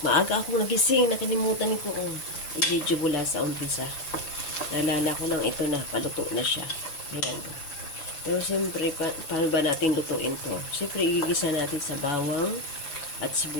akong nagising, nakalimutan ko kung i-video mula sa umpisa. Naalala ko lang ito na, paluto na siya. Ayan. Pero siyempre, paano ba natin lutuin to? Siyempre, igigisa natin sa bawang at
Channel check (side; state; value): right; late; 6.9 ms